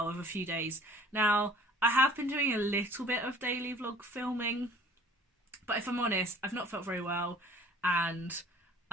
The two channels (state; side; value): normal; both; correlation 0.50